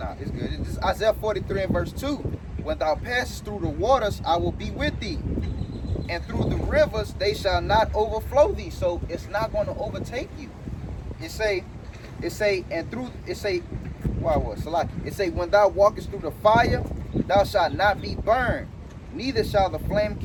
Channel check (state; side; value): identical; both; correlation 1.00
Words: it's good. This is Isaiah 43 and verse 2. When thou passest through the waters, I will be with thee, and through the rivers they shall not overflow thee. So it's not going to overtake you. It say, when thou walkest through the fire, thou shalt not be burned, neither shall the flame